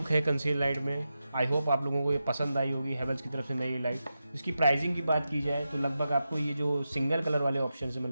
है कंसील लाइट में। आई होप आप लोगों को ये पसंद आई होगी, हैवेल्स की तरफ से नई लाइट। इसकी प्राइसिंग की बात की जाए तो लगभग आपको ये जो सिंगल कलर वाले ऑप्शन है,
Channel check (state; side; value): inverted; both; correlation -0.90